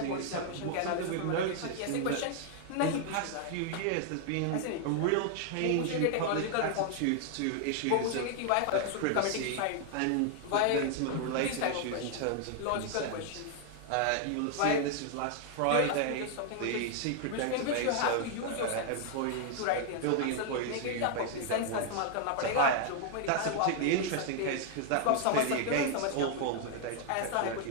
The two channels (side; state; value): both; different; correlation 0.00